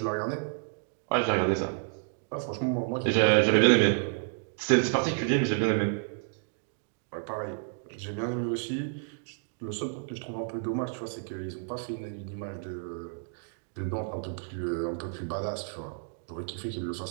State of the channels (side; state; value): left; silent; 57 dB below the other